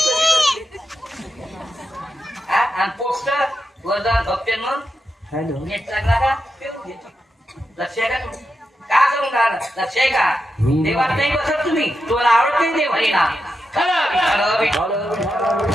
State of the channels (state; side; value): normal; both; correlation 0.87